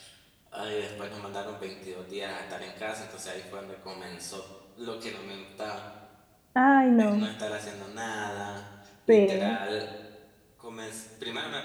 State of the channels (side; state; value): both; identical; correlation 1.00